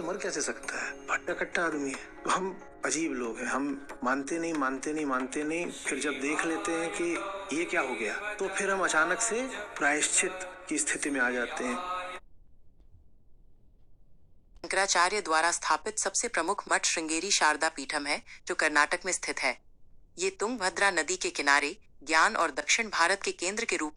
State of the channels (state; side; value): identical; both; correlation 1.00